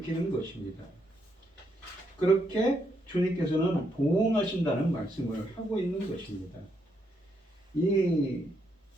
것입니다. 그렇게 주님께서는 보응하신다는 말씀을 하고 있는 것입니다. 이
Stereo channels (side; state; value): both; normal; correlation 0.77